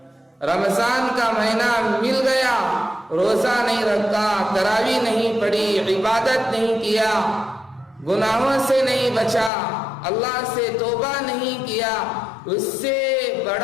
رمضان کا مہینہ مل گیا، روزہ نہیں رکھا، تراویح نہیں پڑھی، عبادت نہیں کیا، گناہوں سے نہیں بچا، اللہ سے توبہ نہیں کیا، اس سے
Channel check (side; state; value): right; drops out; at 9.5 s